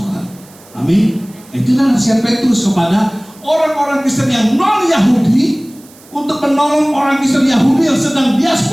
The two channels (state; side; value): noise; right; hiss, 25 dB below the sound